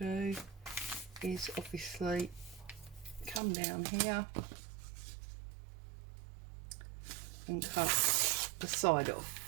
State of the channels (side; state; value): left; drops out; at 3.4 s